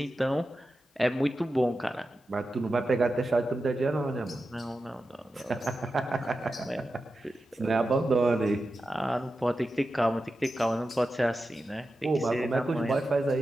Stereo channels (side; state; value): both; normal; correlation 0.91